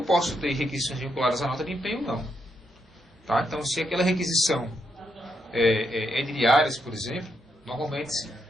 posso ter requisições vinculadas à nota de empenho ou não. Tá? Então se aquela requisição é de diárias, por exemplo, normalmente se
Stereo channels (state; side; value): normal; both; correlation 0.79